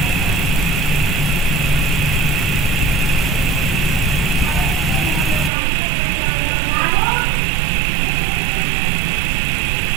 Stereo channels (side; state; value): left; drops out; at 5.5 s